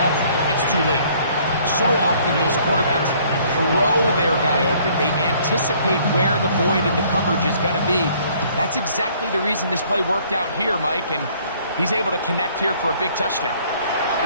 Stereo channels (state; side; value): inverted; both; correlation -0.60